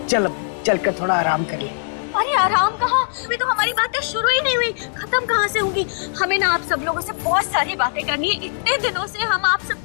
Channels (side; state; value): right; silent; digital silence